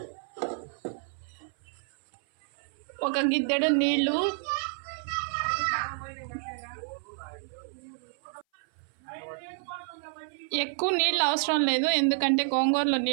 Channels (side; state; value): left; silent; 57 dB below the other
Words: ఒక గిద్దెడు నీళ్ళు, ఎక్కువ నీళ్ళు అవసరం లేదు ఎందుకంటే గోంగూరలో